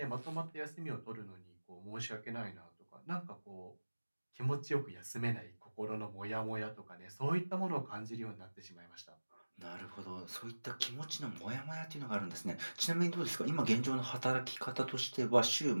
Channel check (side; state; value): both; inverted; correlation -1.00